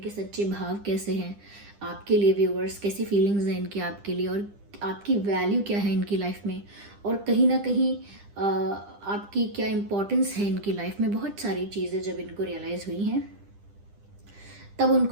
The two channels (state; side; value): late; left; 10 ms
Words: सच्चे भाव कैसे हैं आपके लिए व्यूअर्स, कैसी फीलिंग्स हैं इनकी आपके लिए, और आपकी वैल्यू क्या है इनकी लाइफ में, और कहीं ना कहीं आपकी क्या इम्पोर्टेंस है इनकी लाइफ में। बहुत सारी चीज़ें जब इनको रियलाइज़ हुई हैं तब